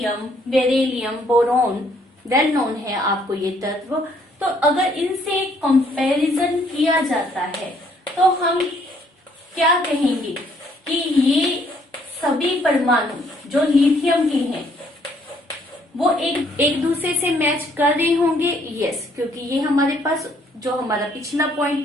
beryllium, boron, well known है आपको ये तत्व। तो अगर इनसे कंपैरिजन किया जाता है तो हम क्या कहेंगे कि ये सभी परमाणु जो लिथियम के हैं वो एक दूसरे से मैच कर रहे होंगे। यस, क्योंकि ये हमारे पास जो हमारा पिछला पॉइंट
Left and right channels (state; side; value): normal; both; correlation 0.66